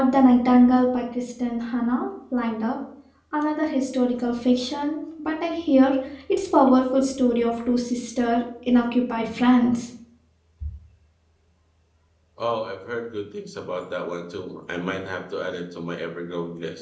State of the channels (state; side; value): identical; both; correlation 1.00